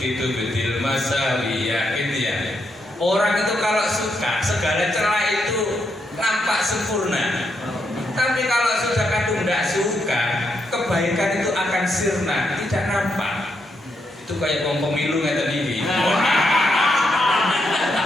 bidil masawiya. Gitu ya. Orang itu kalau suka segala celah itu nampak sempurna. Tapi kalau sudah kadung tidak suka, kebaikan itu akan sirna, tidak nampak. Itu kayak pemilu yang tadi.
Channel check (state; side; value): normal; both; correlation 0.80